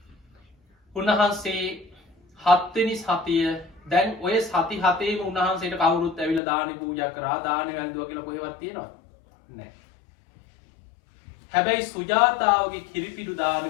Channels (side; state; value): right; drops out; at 6.4 s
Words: උන්වහන්සේ 7 වෙනි සතිය දැන් ඔය සති හතේම උන්වහන්සේට කවුරුත් ඇවිල්ලා දානි පූජා කරා දානි වැළඳුවා කියලා කොහෙවත් තියෙනවද? නැහැ. හැබැයි සුජාතාවගේ කිරිපිඩු